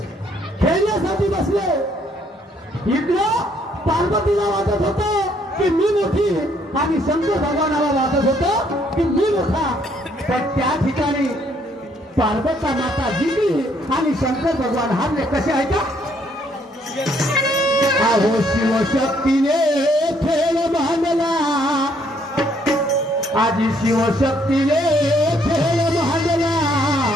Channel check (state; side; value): normal; both; correlation 0.67